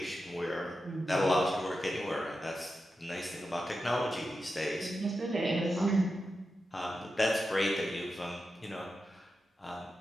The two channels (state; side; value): normal; both; correlation 0.90